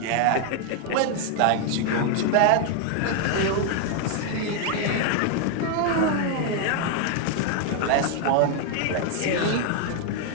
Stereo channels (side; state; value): both; different; correlation 0.00